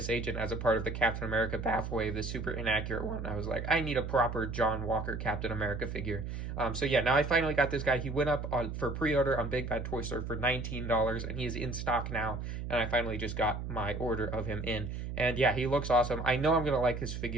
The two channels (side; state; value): right; noise; hum, 5 dB below the sound